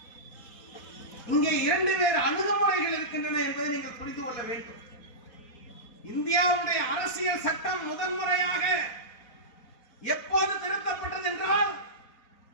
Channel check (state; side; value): late; right; 4.2 ms